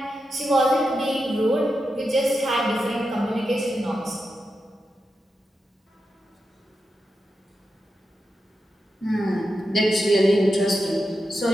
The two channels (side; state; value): both; normal; correlation 0.88